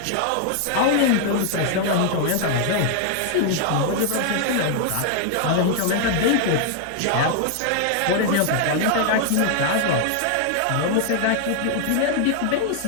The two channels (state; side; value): different; both; correlation 0.00